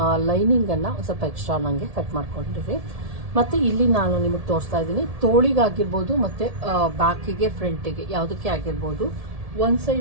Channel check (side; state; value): left; late; 1.7 ms